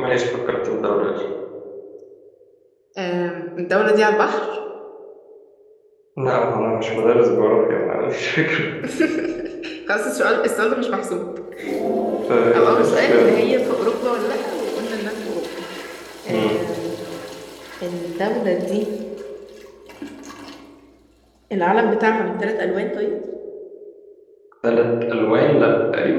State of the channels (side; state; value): both; identical; correlation 1.00